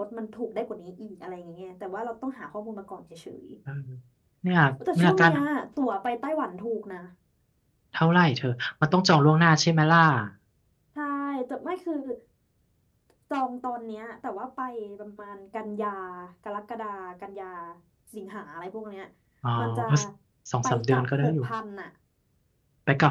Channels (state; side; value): identical; both; correlation 1.00